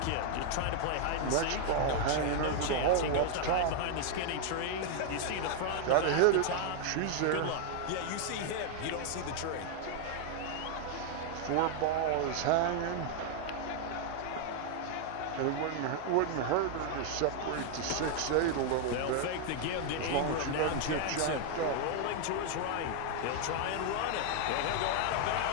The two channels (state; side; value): different; both; correlation 0.00